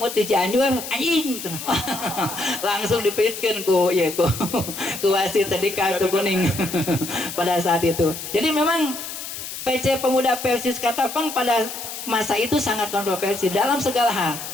di Cianjur anjing langsung dipikirkan ku wasit tadi kartu kuning pada saat itu. Jadi memang PC Pemuda Persis Katapang pada masa itu sangat kontroversi dalam segala hal.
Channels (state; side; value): noise; left; hiss, 8 dB below the sound